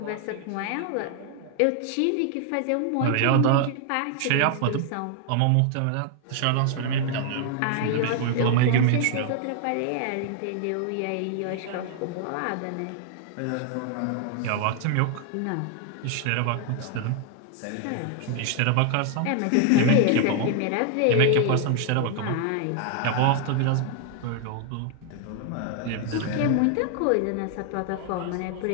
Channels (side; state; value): both; different; correlation 0.00